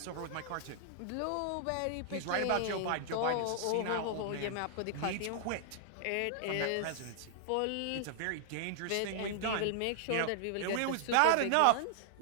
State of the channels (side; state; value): both; different; correlation -0.01